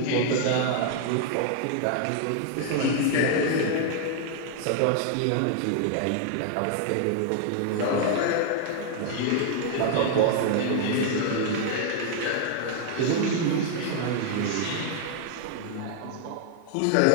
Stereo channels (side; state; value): both; different; correlation 0.00